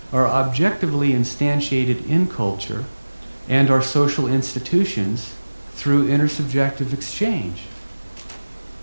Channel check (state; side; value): inverted; both; correlation -1.00